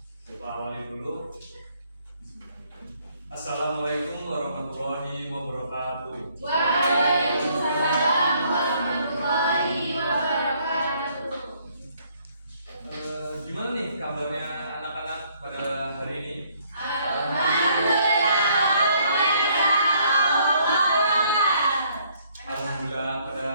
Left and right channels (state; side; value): inverted; both; correlation -0.66